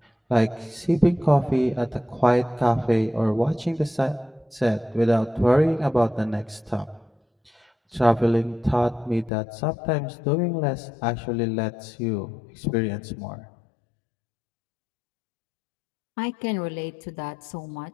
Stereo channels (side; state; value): right; drops out; at 9.3 s